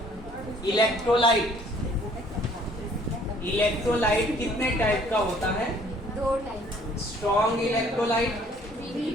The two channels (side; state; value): both; normal; correlation 0.58